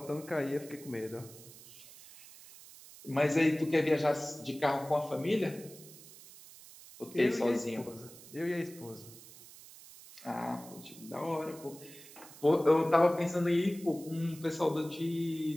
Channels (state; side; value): noise; right; hiss, 19 dB below the sound